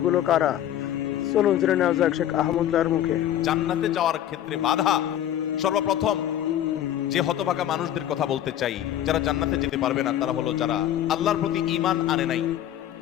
কারা? চলুন জেনে নেওয়া যাক শেখ আহমদুল্লাহর মুখে। জান্নাতে যাওয়ার ক্ষেত্রে বাধা, সর্বপ্রথম যে হতভাগা মানুষদের কথা বলতে চাই, যারা জান্নাতে যেতে পারবে না তারা হলো যারা আল্লাহর প্রতি ঈমান আনে নাই।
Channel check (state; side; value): quieter; right; 11.5 dB